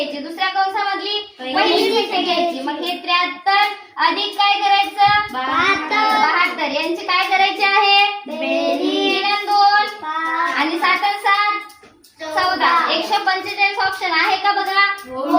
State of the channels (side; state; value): both; identical; correlation 1.00